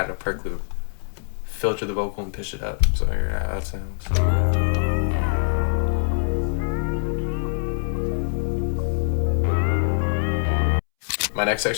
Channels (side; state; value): right; silent; 63 dB below the other